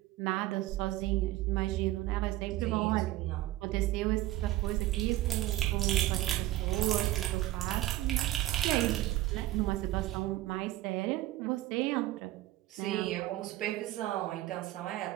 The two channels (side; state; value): left; quieter; 15.8 dB